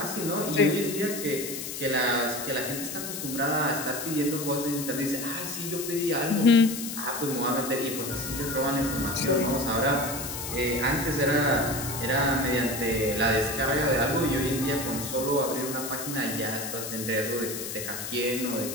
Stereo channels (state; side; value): noise; left; hiss, 7 dB below the sound